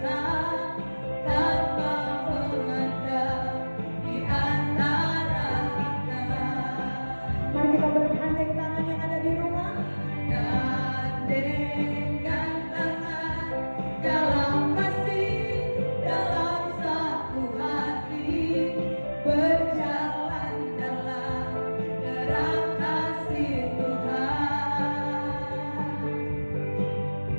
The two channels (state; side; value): inverted; both; correlation -1.00